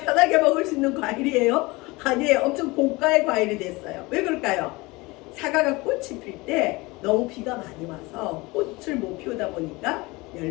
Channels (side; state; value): right; quieter; 23.3 dB